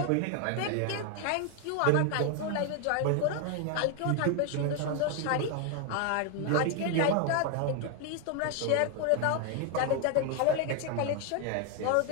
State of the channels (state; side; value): different; both; correlation 0.01